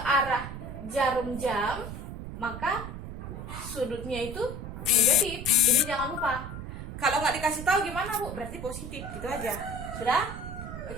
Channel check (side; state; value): right; noise; rumble, 8 dB below the sound